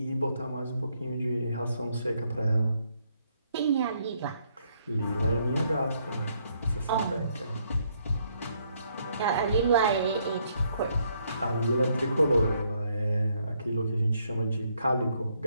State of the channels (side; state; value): both; inverted; correlation -0.72